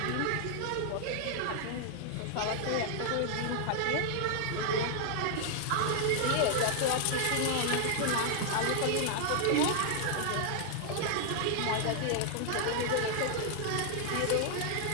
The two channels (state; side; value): different; both; correlation 0.00